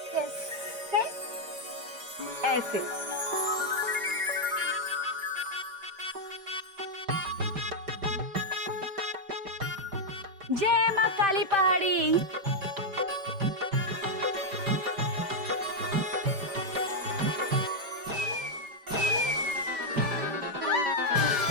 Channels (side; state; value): left; late; 5.1 ms